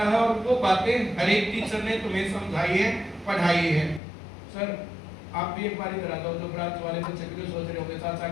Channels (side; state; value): right; drops out; at 4.0 s